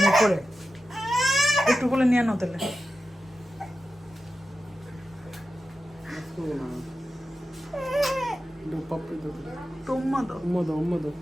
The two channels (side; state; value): both; normal; correlation 0.92